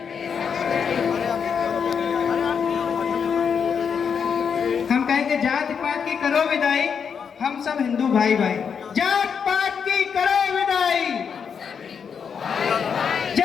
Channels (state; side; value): quieter; right; 6.8 dB